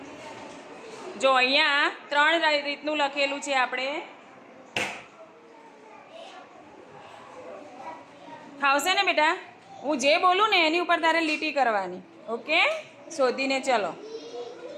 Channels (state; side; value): identical; both; correlation 1.00